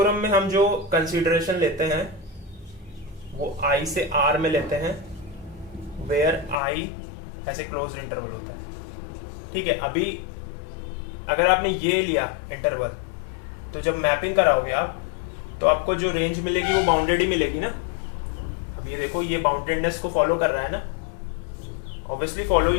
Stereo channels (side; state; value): right; drops out; at 6.6 s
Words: में हम जो कंसीडरेशन लेते हैं वो I से R में लेते हैं, वेयर I ऐसे क्लोज इंटरवल होता है, ठीक है? अभी अगर आपने ये लिया इंटरवल, तो जब मैपिंग कराओगे आप, तो आपको जो रेंज मिलेगी वो बाउंडेड ही मिलेगी ना। अब ये देखो, ये बाउंडेडनेस को फॉलो कर रहा है ना, ऑब्वियसली फॉलो